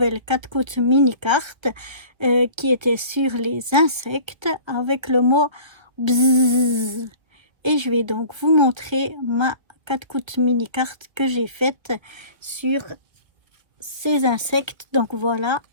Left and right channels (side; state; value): left; late; 1.4 ms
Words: 4 coups mini carte qui était sur les insectes avec le mot bzzz. Et je vais donc vous montrer ma 4 coups mini carte que j'ai faite sur ces insectes. Donc voilà